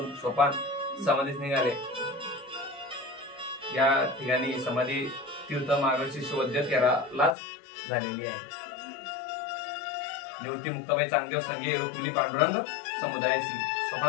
सोपान समाधीस निघाले. या ठिकाणी समाधी तीर्थ मार्गशीर्ष वैद्य 13लाच झालेली आहे. निवृत्ती मुक्ताबाई चांगदेव संगे रुक्मिणी पांडुरंग समुदायाची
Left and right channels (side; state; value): right; drops out; at 7.4 s